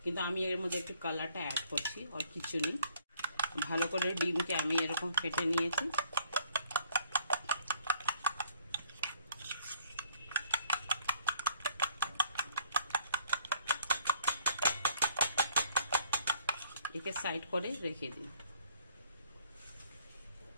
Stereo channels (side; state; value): both; inverted; correlation -0.60